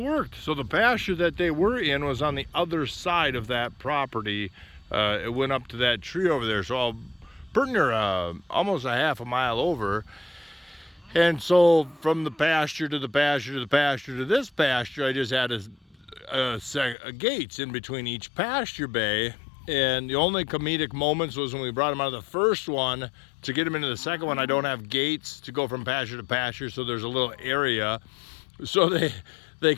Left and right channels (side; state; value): right; drops out; at 16.9 s